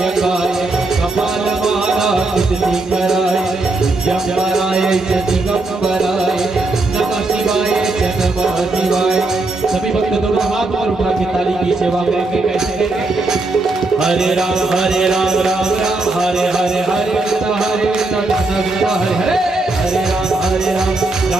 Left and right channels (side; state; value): left; quieter; 3.1 dB